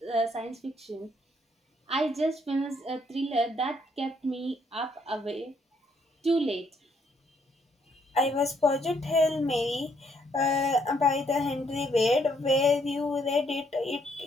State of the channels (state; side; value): normal; both; correlation 0.71